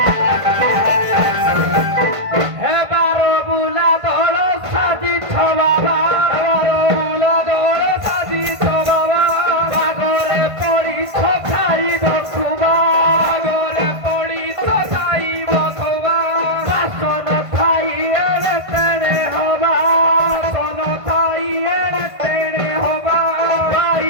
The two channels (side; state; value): left; late; 1.5 ms